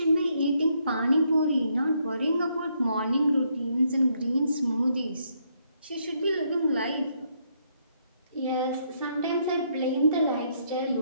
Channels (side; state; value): both; inverted; correlation -0.74